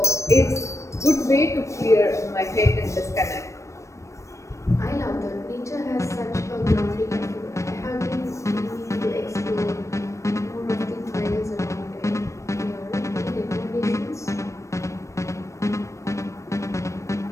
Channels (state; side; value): late; right; 0.15 ms